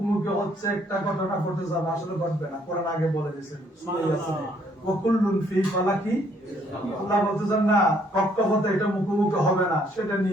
হচ্ছে, একটা ঘটনা ঘটে যাবে, আসলে ঘটবে না। কোরআন আগে বলে দিয়েছেন ওয়াকুল্লুন ফি ফালাকি, আল্লাহ বলতেছেন না কক্ষপথে এটা মুখোমুখি হবে না, সেটা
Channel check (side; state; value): both; normal; correlation 0.66